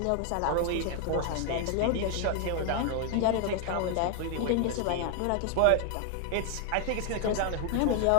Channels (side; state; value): both; different; correlation 0.00